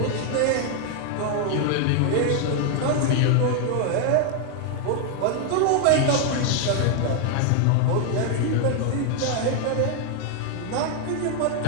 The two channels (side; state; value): both; different; correlation 0.00